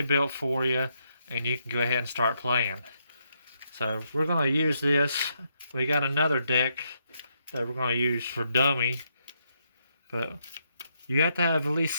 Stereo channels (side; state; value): both; inverted; correlation -0.78